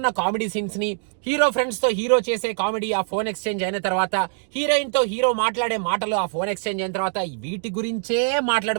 కామెడీ సీన్స్ ని, హీరో ఫ్రెండ్స్ తో హీరో చేసే కామెడీ ఆ ఫోన్ ఎక్స్చేంజ్ అయిన తర్వాత, హీరోయిన్ తో హీరో మాట్లాడే మాటలు ఆ ఫోన్ ఎక్స్చేంజ్ అయిన తర్వాత, వీటి గురించే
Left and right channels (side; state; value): left; silent; 62 dB below the other